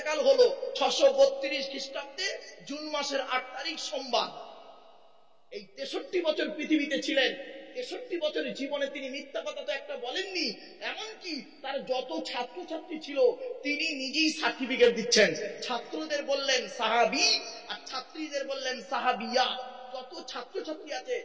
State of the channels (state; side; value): identical; both; correlation 1.00